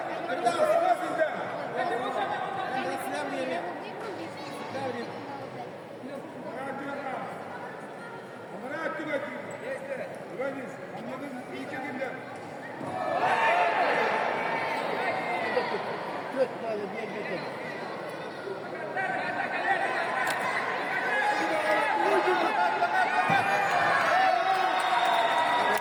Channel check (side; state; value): both; identical; correlation 1.00